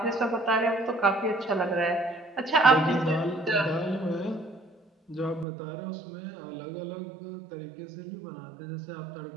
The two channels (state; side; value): drops out; left; at 5.5 s